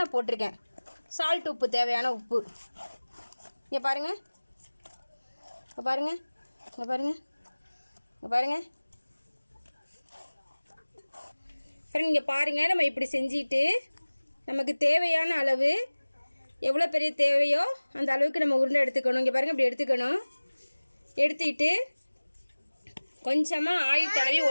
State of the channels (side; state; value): both; inverted; correlation -1.00